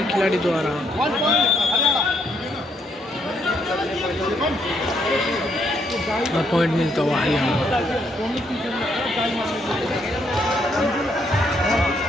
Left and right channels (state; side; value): normal; both; correlation 0.73